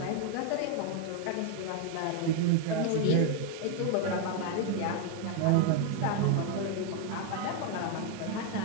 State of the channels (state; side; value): different; both; correlation 0.01